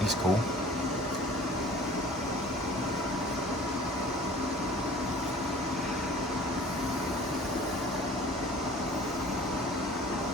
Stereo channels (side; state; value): both; normal; correlation 0.46